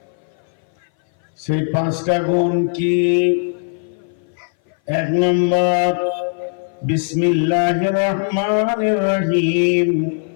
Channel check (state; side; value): silent; right; 59 dB below the other